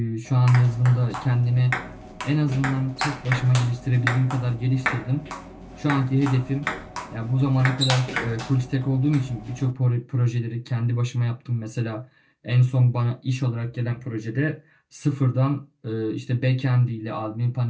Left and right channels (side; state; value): both; identical; correlation 1.00